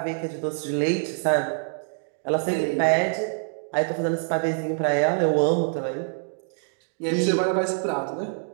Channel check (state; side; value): silent; left; digital silence